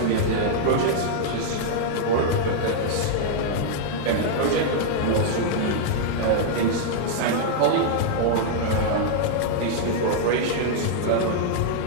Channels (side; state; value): both; different; correlation -0.01